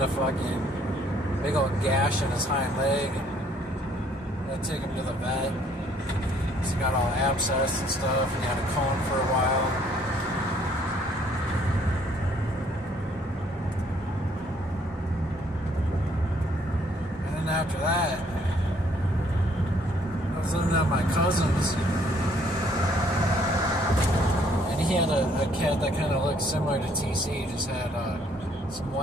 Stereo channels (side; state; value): both; normal; correlation 0.64